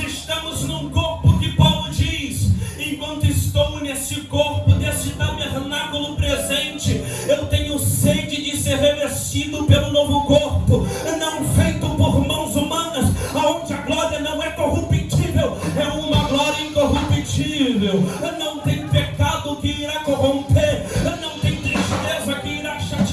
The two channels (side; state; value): both; identical; correlation 1.00